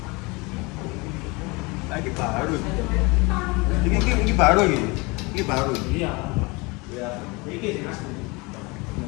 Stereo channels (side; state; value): right; quieter; 26.1 dB